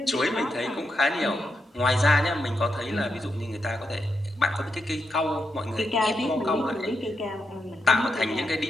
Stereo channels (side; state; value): both; normal; correlation 0.83